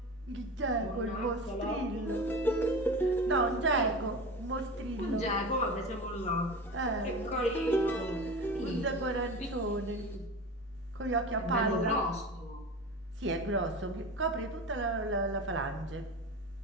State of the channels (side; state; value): left; noise; rumble, 29 dB below the sound